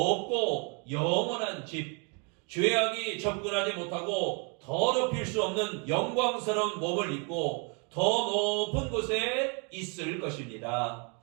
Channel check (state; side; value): quieter; left; 35.3 dB